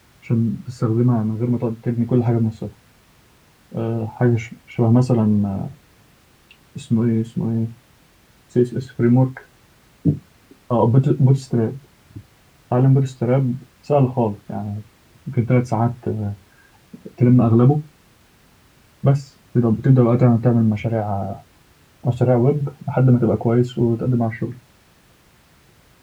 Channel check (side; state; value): both; identical; correlation 1.00